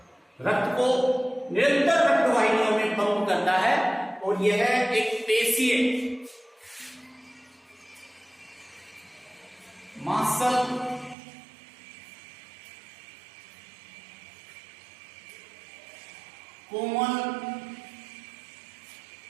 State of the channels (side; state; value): left; drops out; at 11.2 s